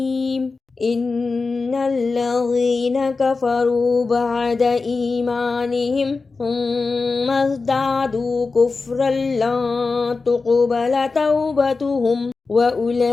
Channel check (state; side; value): quieter; right; 4.1 dB